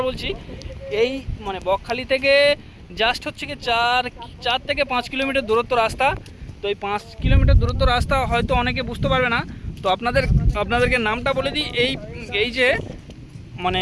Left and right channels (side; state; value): both; identical; correlation 1.00